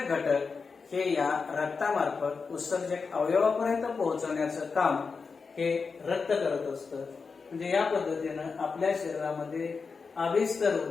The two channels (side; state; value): right; quieter; 4.9 dB